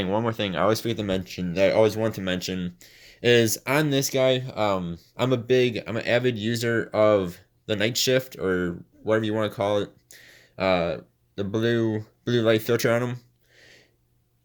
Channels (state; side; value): identical; both; correlation 1.00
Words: I always forget to mention that I always want to mention is on this guy. I'm an avid user of the night shift or whatever you want to call it. The blue light filter on them.